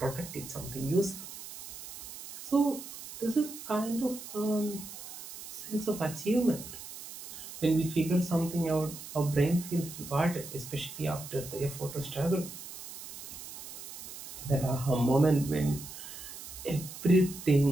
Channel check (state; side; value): noise; right; hiss, 12 dB below the sound